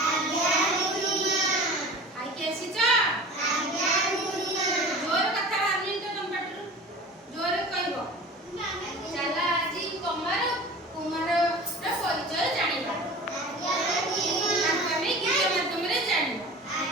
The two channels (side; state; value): both; normal; correlation 0.38